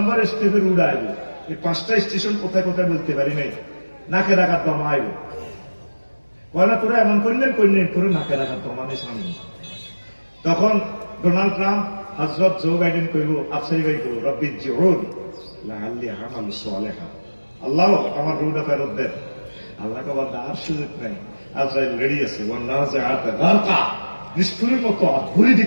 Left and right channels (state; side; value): inverted; both; correlation -1.00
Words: স্টেপের উড়া আইব। এই 5টা স্টেশন কোথায় কোথায় বলতে পারি নাই, নাকে রাখার দমা আইব। কয়না তোরা এমন করলেন করে নাকে রাখার দমা নেই সামনে। তখন ডোনাল্ড ট্রাম্প হযরত জো বাইডেন কইব, আফসারি ভাই কইব রব্বি জিউন লাআল্লি আমালু সালিহা, আল্লাহ আমার রুহটা ফেরত দেন। আল্লাহ কবার আর সুযোগ নাই, আজরাইল রেডি আছে। নিষ্ঠুরের মতো ঘুরে